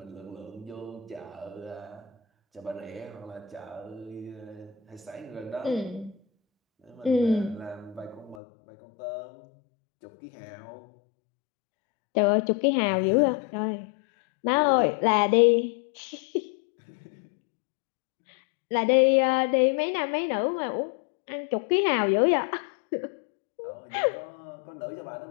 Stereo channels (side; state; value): right; drops out; at 8.3 s